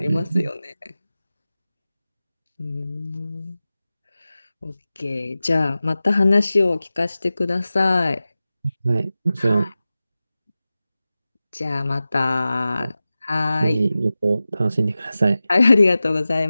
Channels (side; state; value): both; inverted; correlation -0.95